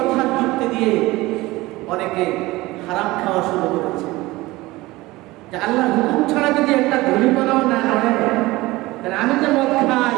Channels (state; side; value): quieter; left; 19.8 dB